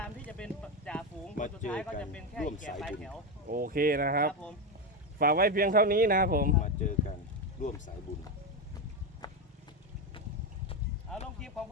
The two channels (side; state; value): both; normal; correlation 0.11